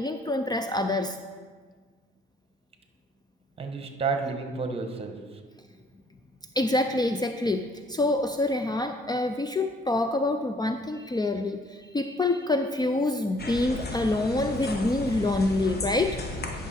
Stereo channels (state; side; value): normal; both; correlation 0.62